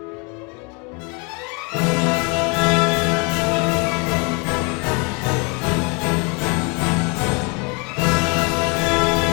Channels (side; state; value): right; quieter; 32.4 dB